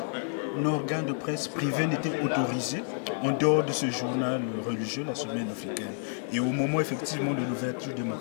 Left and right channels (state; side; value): silent; right; digital silence